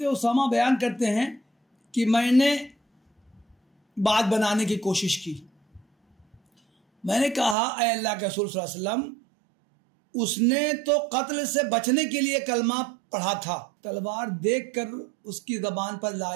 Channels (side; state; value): left; drops out; at 7.6 s